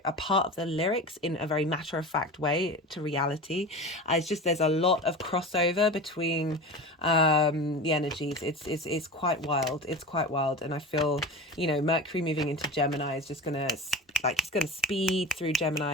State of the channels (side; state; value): both; normal; correlation 0.31